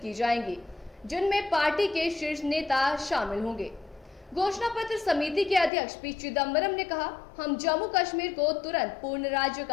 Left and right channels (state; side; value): drops out; right; at 5.7 s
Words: की जाएंगी, जिनमें पार्टी के शीर्ष नेता शामिल होंगे। घोषणा पत्र समिति के अध्यक्ष पी चिदम्बरम ने कहा, हम जम्मू कश्मीर को तुरंत पूर्ण राज्य